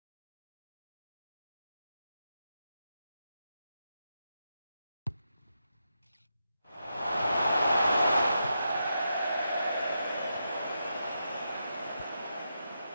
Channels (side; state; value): both; inverted; correlation -0.85